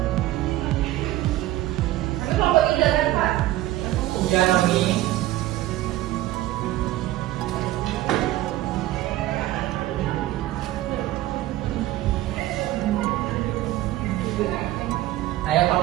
Tapi kelompok 3 kan, Pak? Ujian Nomi. Ayo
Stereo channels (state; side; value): quieter; left; 15.4 dB